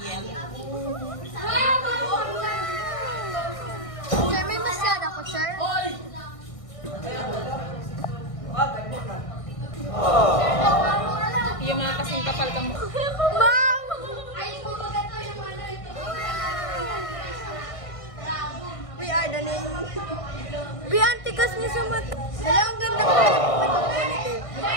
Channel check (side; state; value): right; late; 1.6 ms